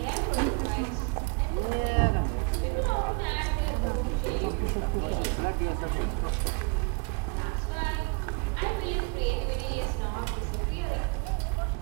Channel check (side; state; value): left; quieter; 32.2 dB